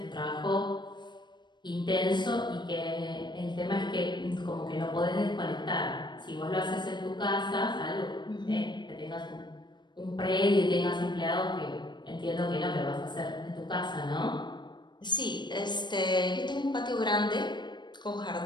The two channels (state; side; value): late; right; 0.22 ms